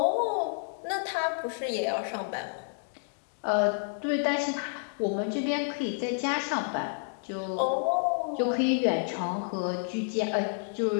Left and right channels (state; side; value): silent; right; digital silence